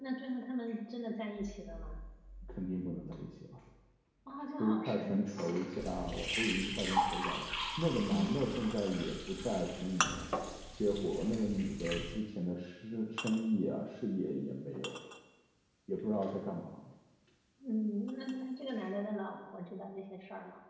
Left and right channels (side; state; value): both; identical; correlation 1.00